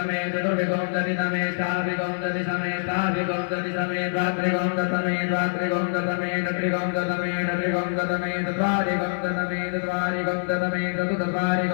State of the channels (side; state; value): right; silent; digital silence